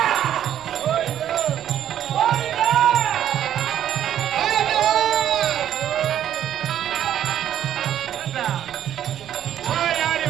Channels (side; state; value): left; quieter; 10.7 dB